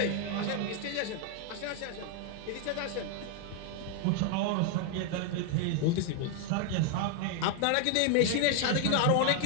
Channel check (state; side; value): different; both; correlation 0.01